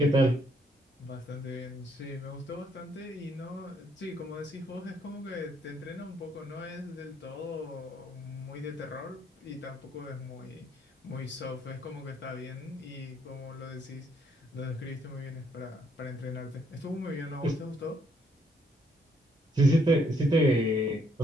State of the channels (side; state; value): both; normal; correlation 0.70